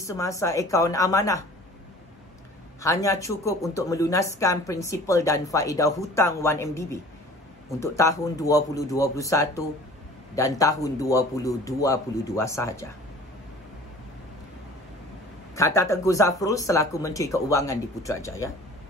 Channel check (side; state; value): both; normal; correlation 0.46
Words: akaun amanah hanya cukup untuk melunaskan prinsipal dan faedah hutang 1MDB untuk tahun 2021 dan tahun 2022 sahaja. Kata Tengku Zafrul selaku Menteri Keuangan di Putrajaya,